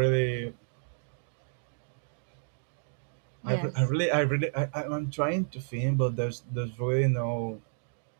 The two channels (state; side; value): silent; left; digital silence